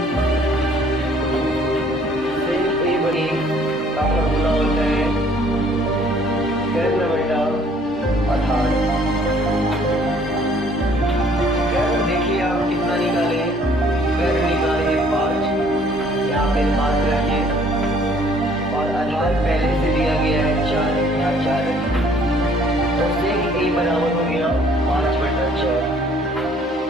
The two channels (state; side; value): normal; both; correlation 0.59